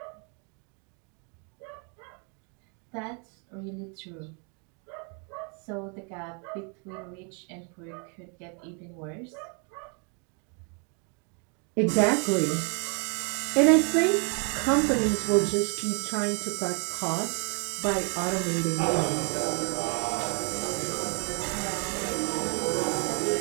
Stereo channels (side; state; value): left; quieter; 37.1 dB